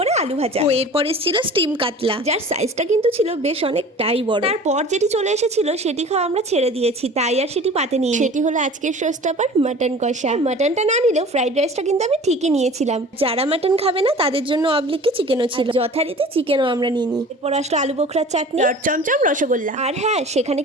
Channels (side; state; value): both; normal; correlation 0.42